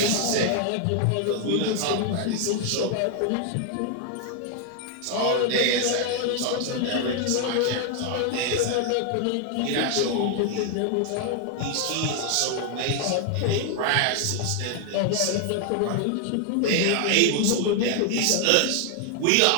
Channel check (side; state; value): both; different; correlation 0.00